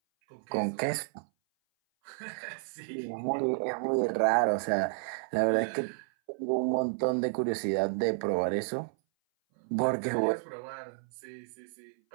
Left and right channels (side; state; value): left; silent; 56 dB below the other